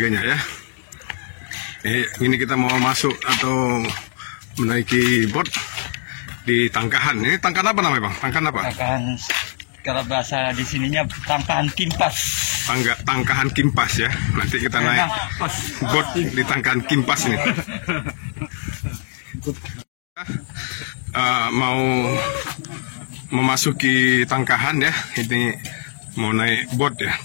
ya. Ini kita mau masuk atau menaiki bot di Tangkahan. Ini Tangkahan apa namanya, Bang? Tangkahan apa? Tangkahan, kalau bahasa di sininya Tangkahan Kimpas. Tangkahan Kimpas ya. Nanti kita naik bot di Tangkahan Kimpas ini. Mau memasuki Tangkahan ya. Ini mau naik bot ya.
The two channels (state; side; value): silent; right; digital silence